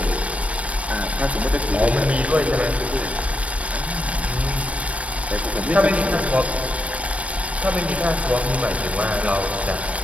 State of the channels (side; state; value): left; late; 0.064 ms